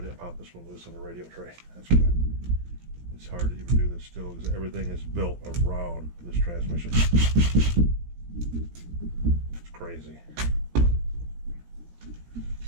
pop this one loose on the radio tray. That's good. It's hard to even do this still because everything is built around this transmission. It's crazy.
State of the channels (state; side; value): late; left; 17 ms